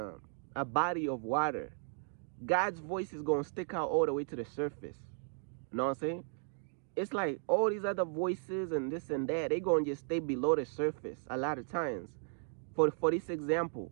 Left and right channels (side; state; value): left; silent; 54 dB below the other